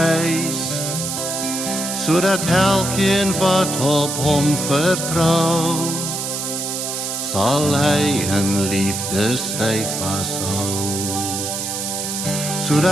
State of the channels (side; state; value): right; noise; hiss, 3 dB below the sound